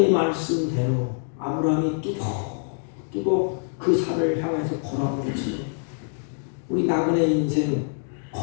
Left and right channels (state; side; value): silent; right; digital silence